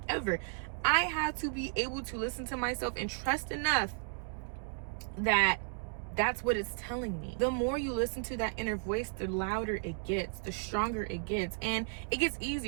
I have to be able to listen to myself and trust enough that that's what it's telling me. The more you listen to that inner voice, the louder it gets, the stronger it gets, and it gets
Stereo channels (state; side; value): silent; left; 55 dB below the other